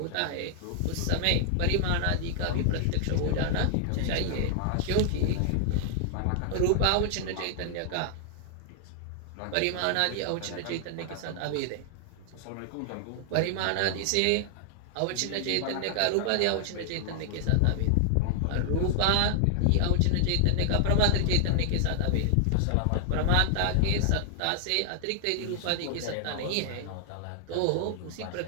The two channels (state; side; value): different; both; correlation 0.00